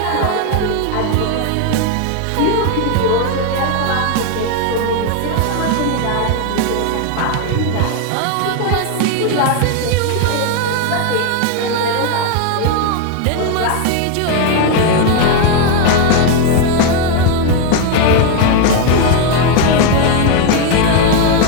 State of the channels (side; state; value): both; different; correlation 0.01